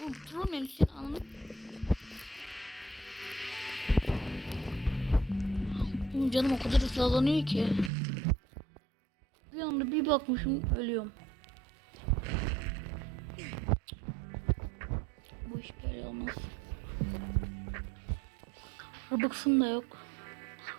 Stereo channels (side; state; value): left; drops out; at 7.9 s